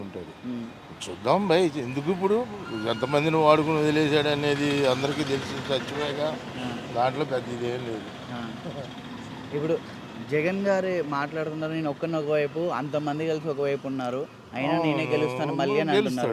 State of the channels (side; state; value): both; identical; correlation 1.00